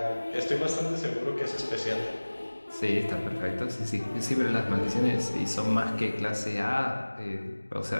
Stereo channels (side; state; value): both; inverted; correlation -1.00